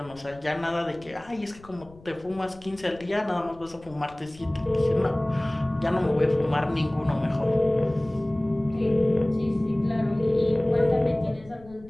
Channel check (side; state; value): left; noise; rumble, 23 dB below the sound